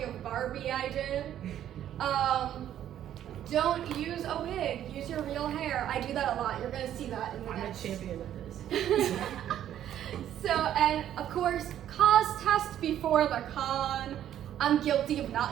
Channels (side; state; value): left; quieter; 11.0 dB